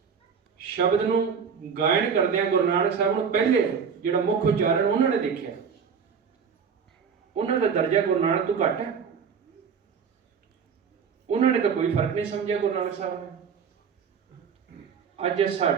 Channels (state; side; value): quieter; left; 6.5 dB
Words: शब्द नूं गायन करदे गुरु नानक साहब नूं पहले जिहड़ा मुख उचारण उन्होंने देखा, उन्होंने दर्जा गुरु नानक तो घट है। उन्होंने तो कोई फर्क नहीं समझा गुरु नानक साहब ने। अज